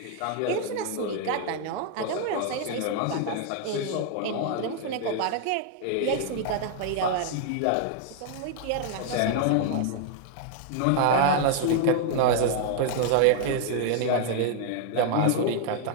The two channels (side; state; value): both; different; correlation 0.00